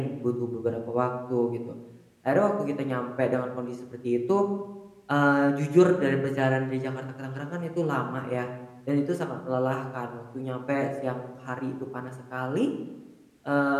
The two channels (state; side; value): identical; both; correlation 1.00